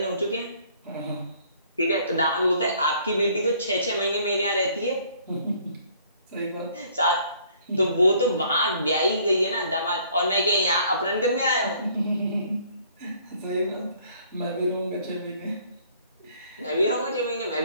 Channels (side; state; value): both; inverted; correlation -0.60